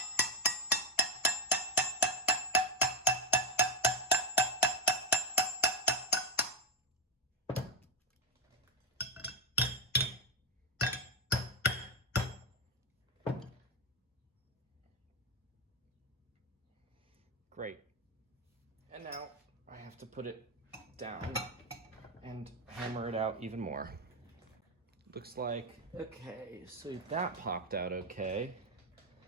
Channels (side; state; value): both; normal; correlation 0.07